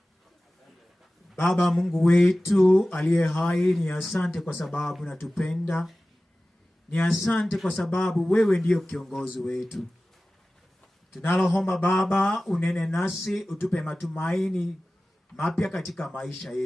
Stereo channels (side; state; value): both; normal; correlation 0.96